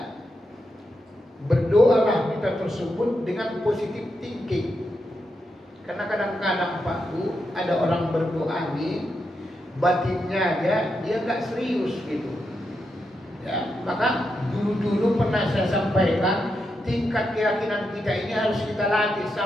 Berdoalah kita tersebut dengan positif thinking. Karena kadang-kadang Pak Bu ada orang berdoa nih batinnya dia nggak serius gitu. Ya, maka dulu pernah saya sampaikan tingkat keyakinan kita ini harus kita latih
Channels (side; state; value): both; normal; correlation 0.85